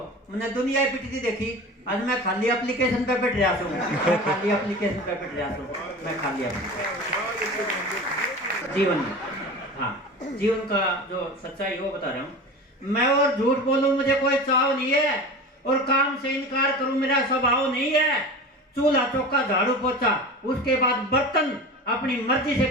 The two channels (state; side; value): normal; both; correlation 0.33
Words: मैंने दुनिया ही पिटती देखी, आज मैं खाली एप्लीकेशन पे पिट रहा हूँ। मैं खाली एप्लीकेशन पे पिट रहा हूँ, मैं खाली जीवन में, हाँ जीवन का जो सच्चाई वो बता रहा हूँ मैं। और झूठ बोलूं मुझे कोई चाव नहीं है, और काम से इनकार करूं मेरा स्वभाव नहीं है। चूल्हा चौका झाड़ू पोछा, उसके बाद बर्तन अपनी मर्जी से